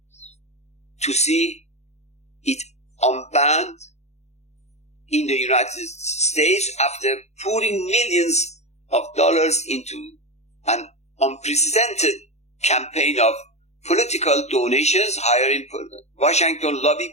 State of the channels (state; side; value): late; right; 0.32 ms